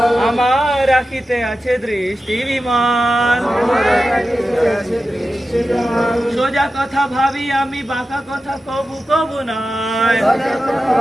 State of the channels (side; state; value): both; normal; correlation 0.93